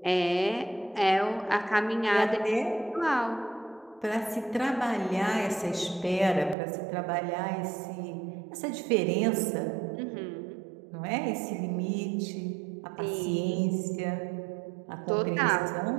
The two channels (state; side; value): drops out; left; at 6.6 s